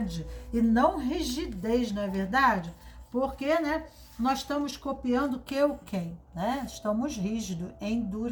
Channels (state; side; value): identical; both; correlation 1.00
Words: e não rigidez, não é verdade? Porque, né, nós estamos copiando que o quem, né? Estamos rígidos,